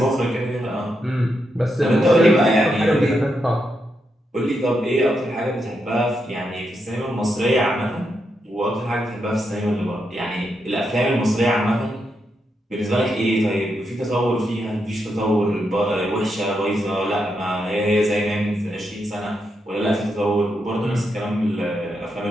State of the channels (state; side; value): normal; both; correlation 0.83